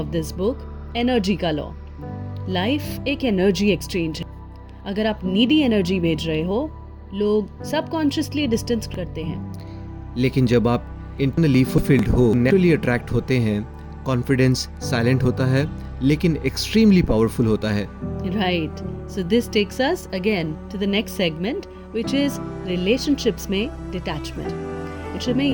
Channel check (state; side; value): identical; both; correlation 1.00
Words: this book, energy का लॉ। लाइफ एक एनर्जी एक्सचेंज है। अगर आप नीडी एनर्जी भेज रहे हो, लोग सबकॉन्शियसली डिस्टेंस करते हैं। लेकिन जब आप इंटरनली फुलफिल्ड हो, नेचुरली अट्रैक्ट होते हैं। कॉन्फिडेंस साइलेंट होता है लेकिन एक्सट्रीमली पावरफुल होता है। Right. So this takes us again to the next segment, which is relationships में detachment। इसमें